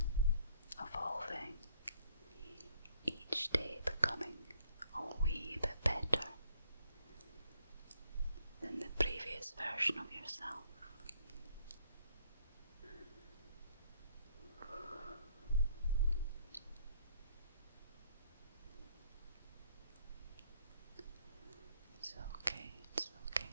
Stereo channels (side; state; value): both; inverted; correlation -0.66